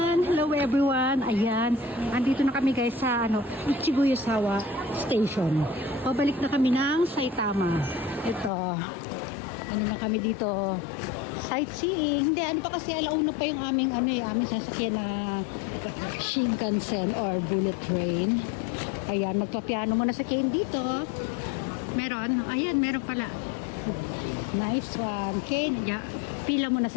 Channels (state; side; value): drops out; right; at 8.5 s